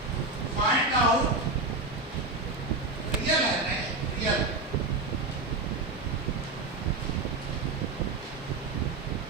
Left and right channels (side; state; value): left; quieter; 3.3 dB